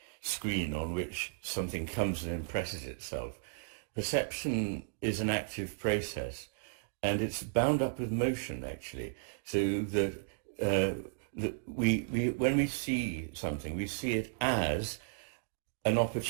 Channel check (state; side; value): silent; left; digital silence